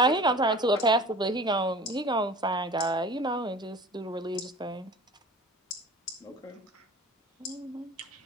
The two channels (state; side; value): normal; both; correlation 0.41